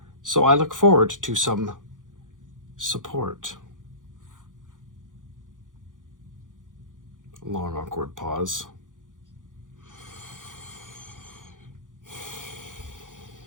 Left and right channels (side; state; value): left; late; 0.88 ms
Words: So I look forward to some support. Long, awkward pause.